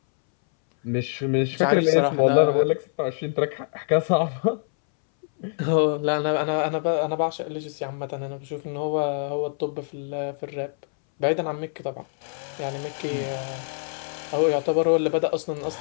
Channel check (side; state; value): right; silent; 61 dB below the other